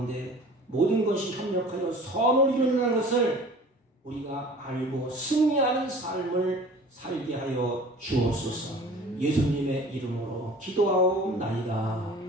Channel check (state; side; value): normal; both; correlation 0.44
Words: 모든 것이 협력하여 선을 이루는 것을 우리가 알고 승리하는 삶을 살게 하여 주옵소서. 예수님의 이름으로 기도하옵나이다.